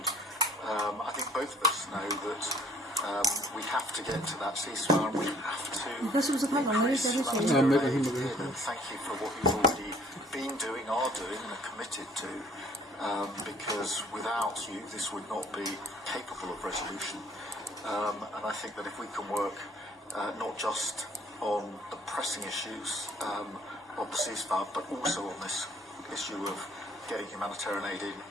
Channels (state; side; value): normal; both; correlation 0.58